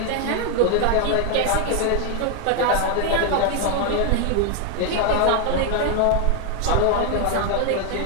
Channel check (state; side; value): different; both; correlation 0.01